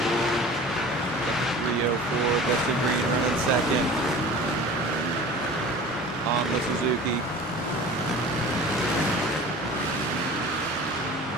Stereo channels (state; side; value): normal; both; correlation 0.40